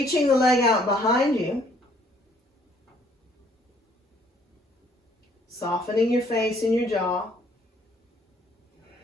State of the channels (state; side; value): normal; both; correlation 0.63